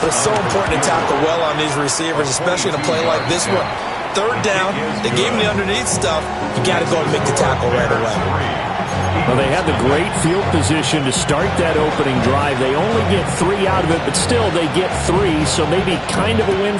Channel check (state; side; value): identical; both; correlation 1.00